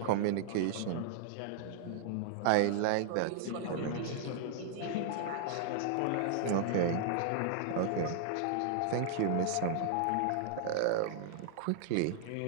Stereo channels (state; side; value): different; both; correlation -0.01